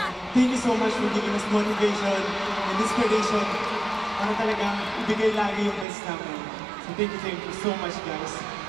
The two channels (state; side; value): drops out; left; at 5.9 s